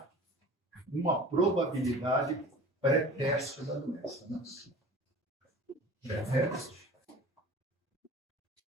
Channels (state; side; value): normal; both; correlation 0.40